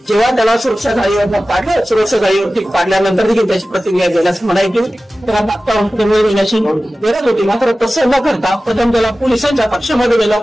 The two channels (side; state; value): both; normal; correlation 0.96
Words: जेव्हा त्याला सुरक्षा जाळीवर पाडलं, सुरक्षा जाळीवरती पाडल्यानंतर देखील त्याची प्रतिक्रिया देण्यास म्हणायची त्याला तात्काळ देण्याची गरज होती. मात्र तसं न करता प्रथम त्याला पोलिसांच्या पक्षामध्ये गेलं,